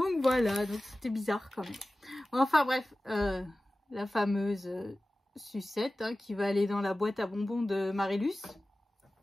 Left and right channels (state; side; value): normal; both; correlation 0.96